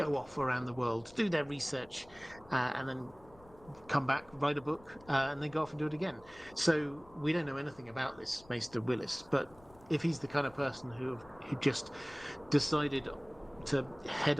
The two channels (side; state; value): left; noise; rumble, 25 dB below the sound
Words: off around the world, do their research, and then come back, write a book, and then go off and do it again. So we don't know anything about this Maester Willis, but if he's the kind of person who just decided to head